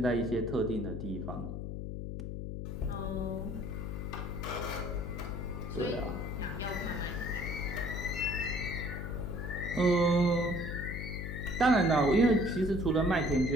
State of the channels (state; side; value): noise; left; hum, 5 dB below the sound